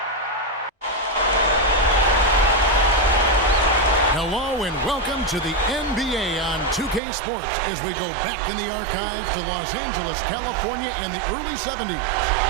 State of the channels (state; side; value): drops out; left; at 7.0 s